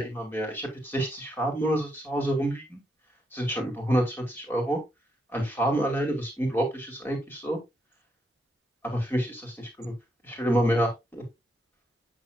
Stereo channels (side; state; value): both; normal; correlation 0.79